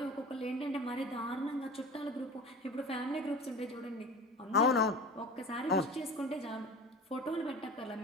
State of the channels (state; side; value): normal; both; correlation 0.36